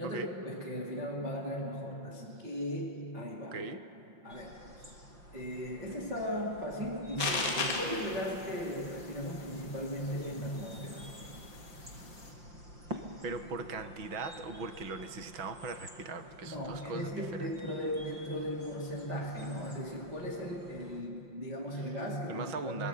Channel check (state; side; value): late; left; 5.7 ms